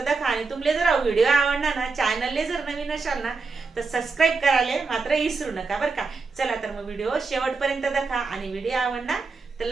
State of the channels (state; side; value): quieter; left; 4.3 dB